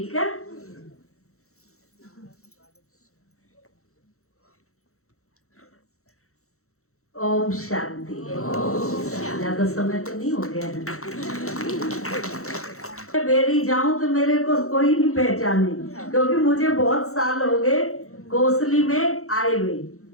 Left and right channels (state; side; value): late; right; 0.64 ms